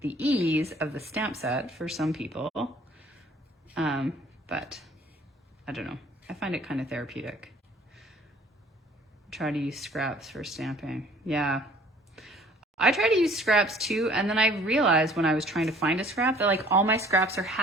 the ease of the stamp set for some people. But I don't know. I find it kind of therapeutic. Try to use scraps for stamping. Yeah. I try to use scraps too, and then I realized when I was trying to find a scrap that like all my scraps are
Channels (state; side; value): normal; both; correlation 0.54